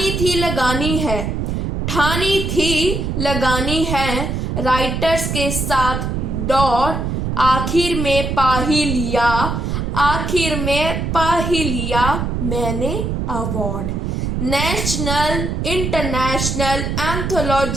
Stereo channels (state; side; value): noise; right; rumble, 2 dB below the sound